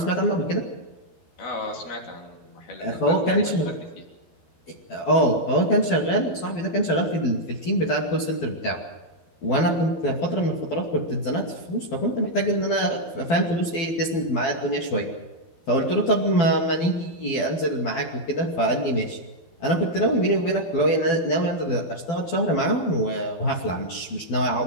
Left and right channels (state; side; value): late; right; 12 ms